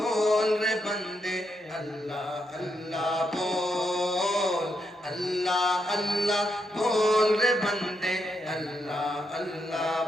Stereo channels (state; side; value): normal; both; correlation 0.81